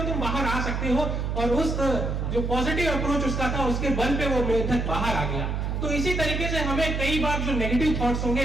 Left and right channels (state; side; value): noise; right; hum, 1 dB below the sound